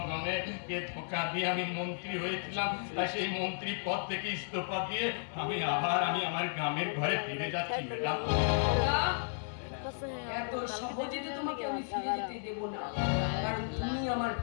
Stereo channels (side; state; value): right; silent; 55 dB below the other